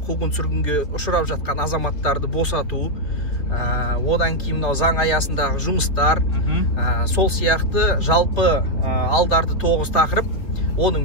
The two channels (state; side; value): late; right; 3.6 ms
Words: сүргінге ұшырап жатқан азаматтарды босату, одан кейін мынау заң аясындағы жұмыстар, сол сияқты жалпы алдарды 9 тақырып.